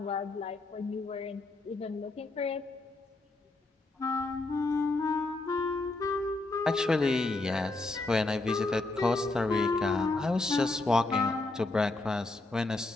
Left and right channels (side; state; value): right; quieter; 3.1 dB